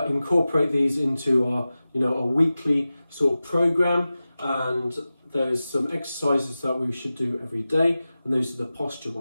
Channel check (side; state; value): both; inverted; correlation -0.95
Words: incorporate these into our, a weekly sort of program, and there's some exercises that we should do every day, and those are the posture